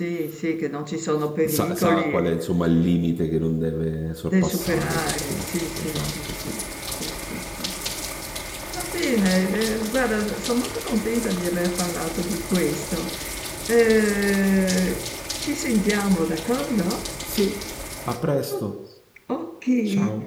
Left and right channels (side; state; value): both; identical; correlation 1.00